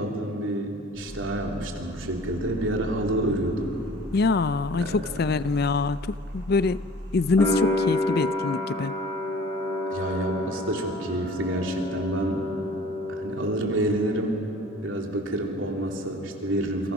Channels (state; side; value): normal; both; correlation 0.47